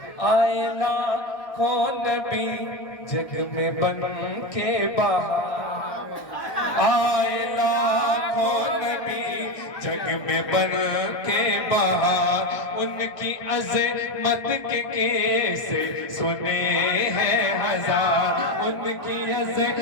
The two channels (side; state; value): right; late; 1.6 ms